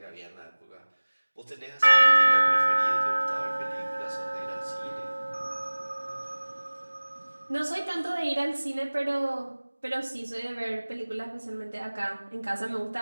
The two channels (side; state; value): both; inverted; correlation -1.00